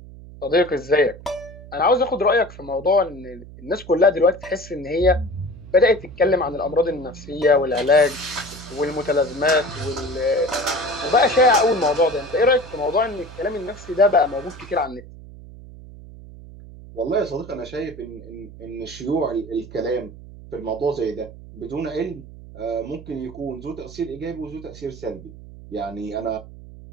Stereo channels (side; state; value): right; noise; hum, 17 dB below the sound